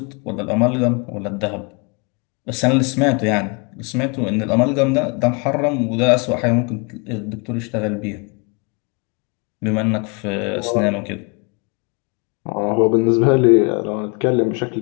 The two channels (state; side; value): quieter; right; 32.7 dB